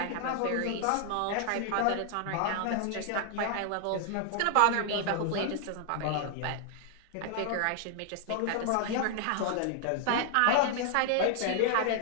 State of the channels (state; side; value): different; both; correlation 0.00